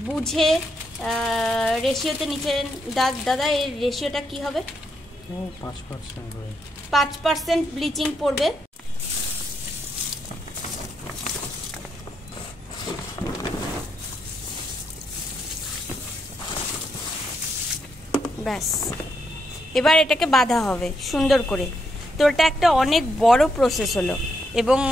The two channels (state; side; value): normal; both; correlation 0.79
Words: বুঝে রেশিওতে নিচেন। দাদা এর রেশিওটা কি হবে? 5% ব্লিচিং পড়বে। ব্যাস, এবার এটাকে বাঁধা হবে সুন্দর করে। তো এটা একটা অনেক বড় প্রসেস হলো, এবং